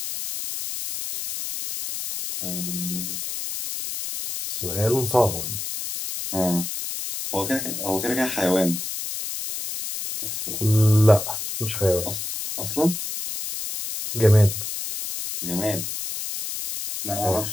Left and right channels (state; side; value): noise; left; hiss, 5 dB below the sound